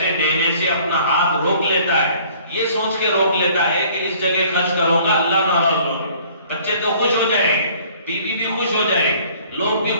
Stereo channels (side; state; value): both; inverted; correlation -0.55